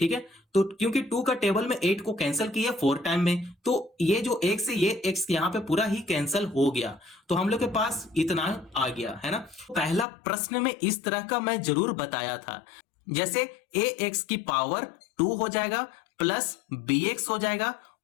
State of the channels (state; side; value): drops out; right; at 10.1 s